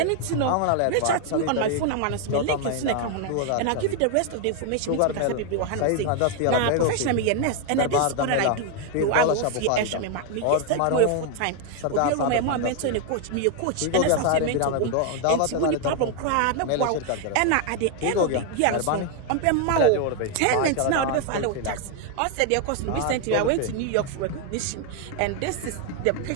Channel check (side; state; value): both; different; correlation 0.01